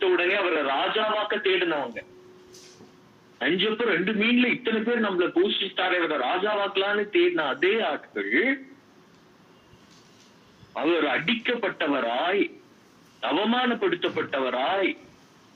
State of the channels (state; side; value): identical; both; correlation 1.00